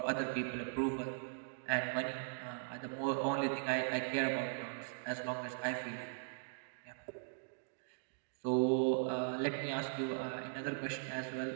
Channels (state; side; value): silent; left; digital silence